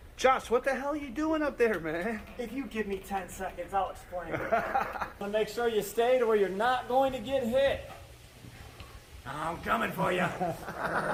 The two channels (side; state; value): both; identical; correlation 1.00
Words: Josh, what the hell are you doing up there, man? If you give me 10 seconds, I'll explain it. So make sure you stay to where you're not going to get hit. I'm coming for you.